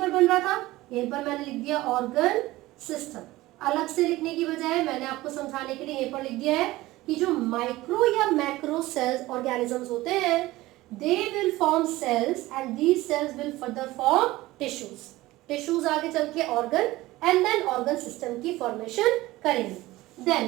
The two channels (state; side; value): quieter; left; 18.2 dB